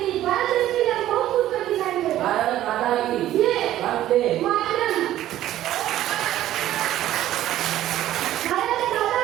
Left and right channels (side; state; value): left; quieter; 13.3 dB